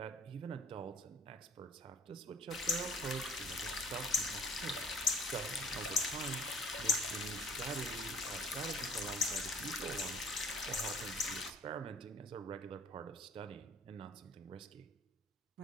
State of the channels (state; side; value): normal; both; correlation 0.53